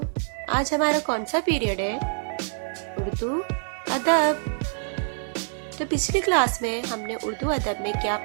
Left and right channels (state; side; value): silent; left; digital silence